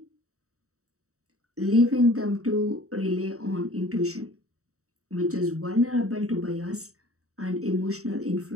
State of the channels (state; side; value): late; left; 0.65 ms